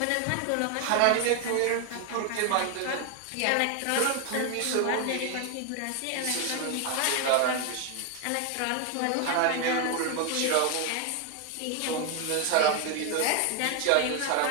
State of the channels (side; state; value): both; different; correlation 0.01